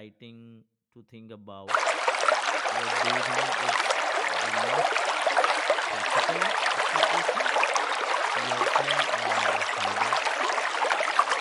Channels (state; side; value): identical; both; correlation 1.00